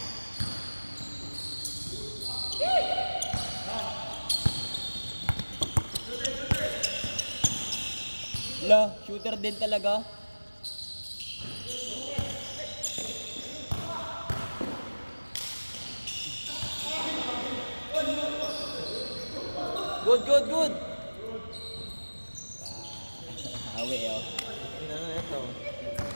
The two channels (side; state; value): both; inverted; correlation -1.00